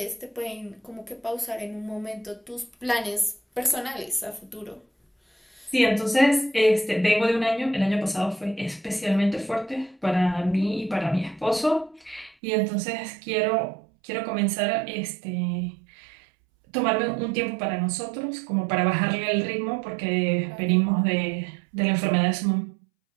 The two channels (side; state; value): left; drops out; at 12.4 s